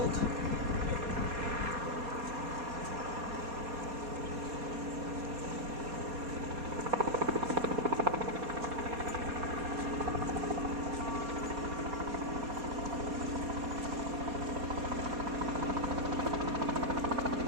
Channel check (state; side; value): late; left; 4.2 ms